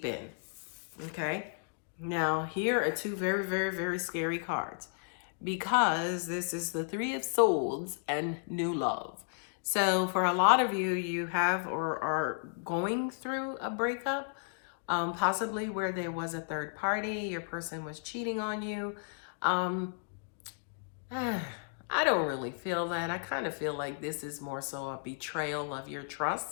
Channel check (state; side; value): silent; right; digital silence